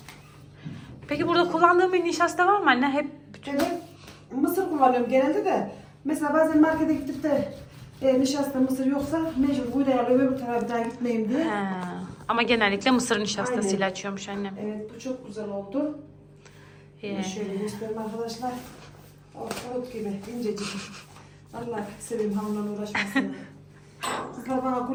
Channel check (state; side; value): identical; both; correlation 1.00